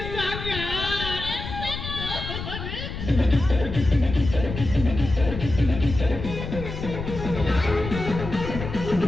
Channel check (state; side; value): noise; left; rumble, 7 dB below the sound